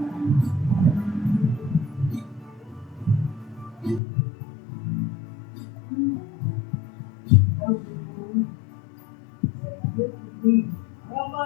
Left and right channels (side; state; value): right; drops out; at 4.0 s